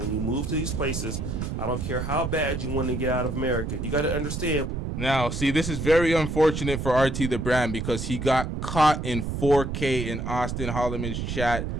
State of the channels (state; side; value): noise; right; rumble, 4 dB below the sound